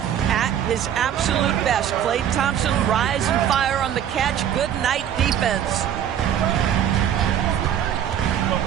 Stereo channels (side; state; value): left; quieter; 9.9 dB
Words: his absolute best, Klay Thompson rise and fire on the catch. Good night defense.